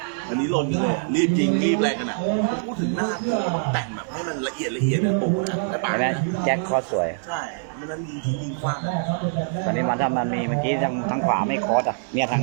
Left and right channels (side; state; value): left; silent; digital silence